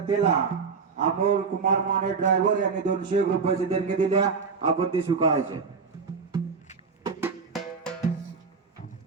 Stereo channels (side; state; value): left; quieter; 5.3 dB